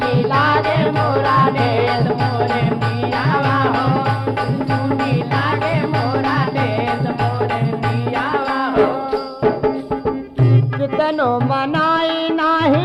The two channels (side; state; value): both; identical; correlation 1.00